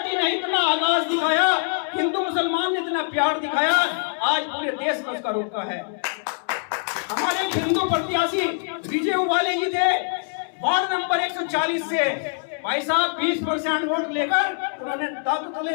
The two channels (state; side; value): silent; right; 63 dB below the other